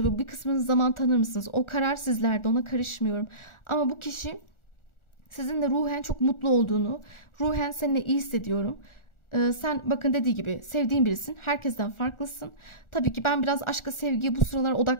bir kısmınız zaman tanır mısınız? O karar sizlerde, ona karışmıyorum. Ama bu kişi sizinle ruhen çok mutlu olduğunu, ruhen seninle iyi hissediyorum. Sen bakın dediği gibi sevdiğin birisin. Herkesten farklısın. Tabii ki ben biraz aşka, sevgiye bu sıralar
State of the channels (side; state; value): right; late; 1.4 ms